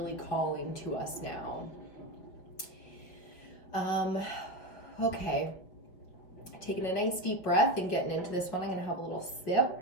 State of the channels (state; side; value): late; right; 5.8 ms